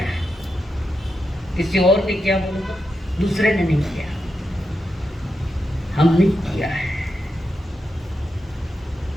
है। किसी और ने किया बोलो तो, दूसरे ने नहीं किया, हमने किया है।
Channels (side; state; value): both; normal; correlation 0.87